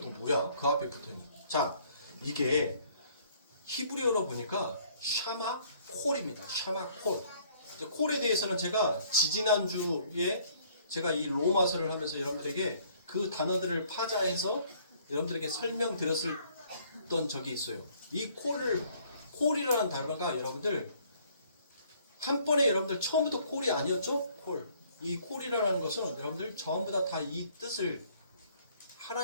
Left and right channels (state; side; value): inverted; both; correlation -0.61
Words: 또 뭐야? 그 앞에 붙어있는. 자, 이게 히브리어로 보니까 샤마 콜입니다. 샤마 콜. 콜에 대해서는 제가 지지난주에 제가 이 로마서를 하면서 여러분들에게 그 단어들을 파자해서 여러분들에게 설명드렸던 적이 있어요. 이 콜이라는 단어가 여러분들 한 번에 여러분들 처음부터 콜이 아니었죠? 콜. 이 콜이라는 것은 여러분들 전부 다 이 뜻을,